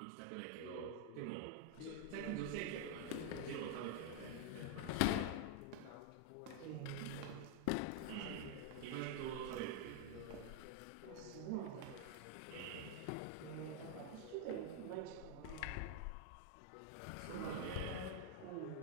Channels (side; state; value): both; different; correlation 0.00